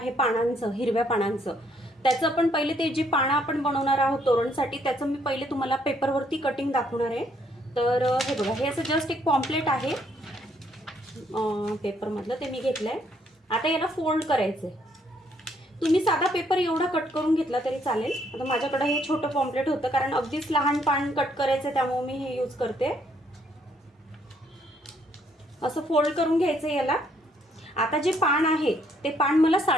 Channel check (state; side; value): normal; both; correlation 0.69